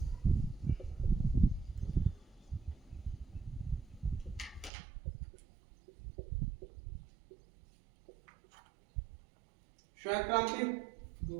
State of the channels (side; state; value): left; drops out; at 4.7 s